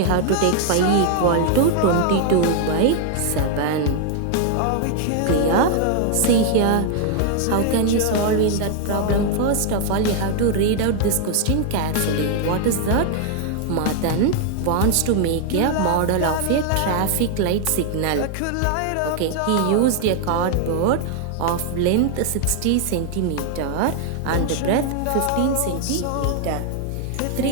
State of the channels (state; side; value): different; both; correlation 0.00